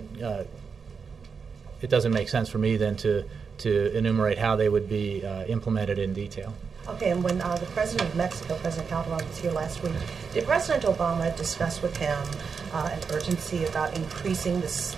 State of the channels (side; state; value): left; quieter; 5.7 dB